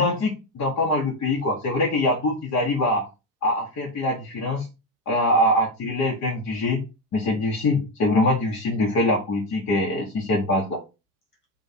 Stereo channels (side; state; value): both; normal; correlation 0.12